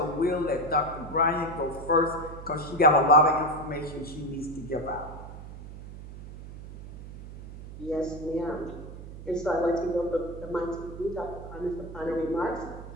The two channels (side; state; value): right; noise; hum, 13 dB below the sound